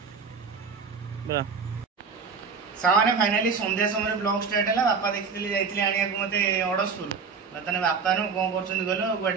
बोलो सामाने फाइनली संध्या समय ब्लॉग स्टार्ट है बापा देखी जाइए आने को मत अड़सपुर बर्तमान बापा नु कौन कर गल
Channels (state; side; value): quieter; left; 5.3 dB